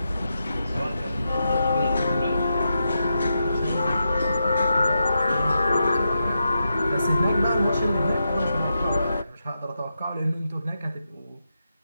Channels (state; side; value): inverted; both; correlation -0.86